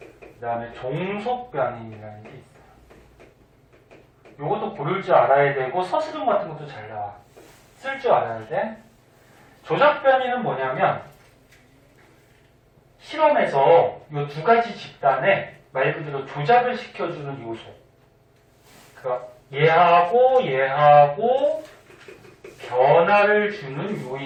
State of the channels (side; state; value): both; identical; correlation 1.00